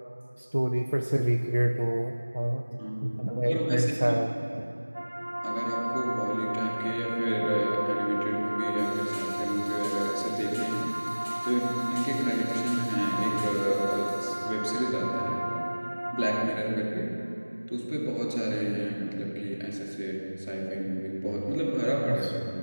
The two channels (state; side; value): inverted; both; correlation -1.00